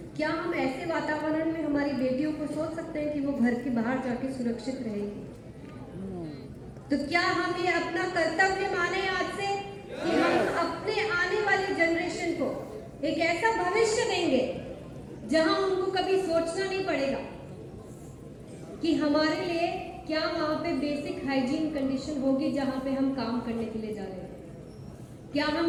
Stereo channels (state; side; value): identical; both; correlation 1.00